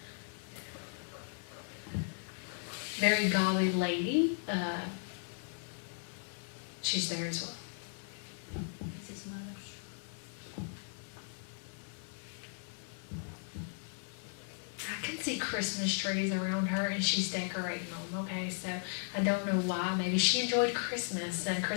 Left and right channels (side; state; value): right; silent; 53 dB below the other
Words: Very golly lady. She's there as well. That's his mother. I can see Christmas trees around her, and she's decorating them, okay? So I don't know why. Maybe she enjoyed Christmas, and